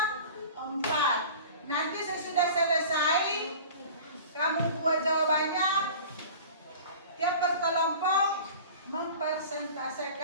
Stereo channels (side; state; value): both; inverted; correlation -0.40